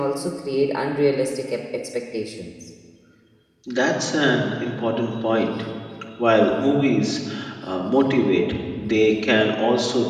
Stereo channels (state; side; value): identical; both; correlation 1.00